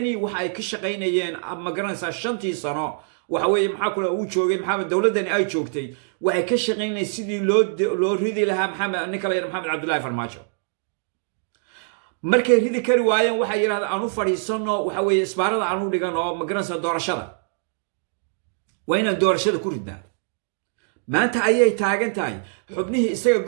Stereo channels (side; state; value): left; silent; digital silence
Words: waxa ay ka shaqaynayeen magaranaysaa 5 sano waxa weeye maxaa kula uu joogay maxamed dawladani ay joogtay waxay ka shaqaynayeen sidii loo ridi lahaa maxamed ninka la yiraahdo maxamed cabdullaahi farmaajo markay ridi kari waayeen waxay yiraahdeen aanu fadhiisano waxa weeye isbaarada aanu dhigano magaranaysaa doorashada wayna doorashada ku ridnaa maanta ayay taagan tahay xubnihii isaga